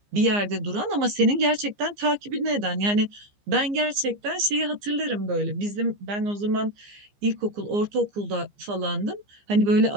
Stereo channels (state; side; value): late; left; 15 ms